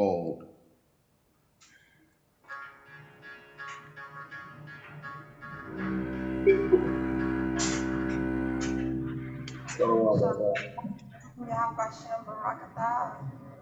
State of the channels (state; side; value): identical; both; correlation 1.00